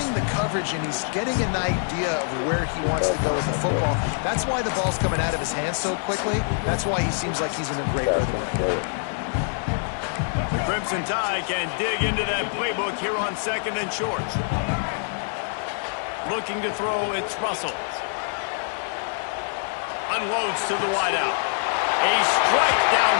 the coverage, and he's getting an idea of where he wants to go with the football. That's why the ball's coming out of his hands so quickly. That's why he seems like he's in a great rhythm right now. The Crimson Tide can dig into that playbook here on 2nd and short. Looking to throw, it's Russell. Unloads to the wideout. A strike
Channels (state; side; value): silent; right; 62 dB below the other